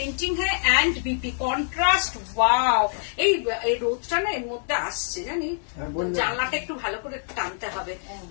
है एंड बीपी कॉन्ट्रास्ट। वाओ, এই রোদটা না এর মধ্যে আসছে জানি, জানলাটা একটু ভালো করে টানতে হবে,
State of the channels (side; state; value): right; silent; digital silence